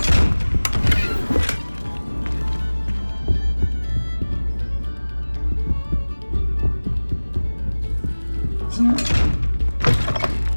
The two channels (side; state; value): both; inverted; correlation -1.00